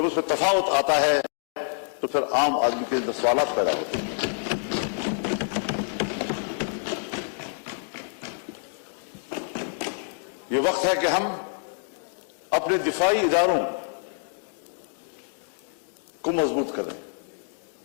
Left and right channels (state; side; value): silent; right; digital silence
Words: उसमें तफावत आता है तो फिर आम आदमी के अंदर सवालात पैदा होते हैं। ये वक्त है कि हम अपने दिफाई इदारों को मजबूत करें,